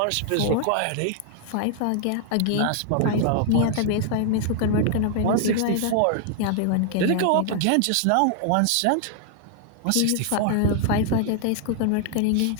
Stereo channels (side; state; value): both; different; correlation 0.00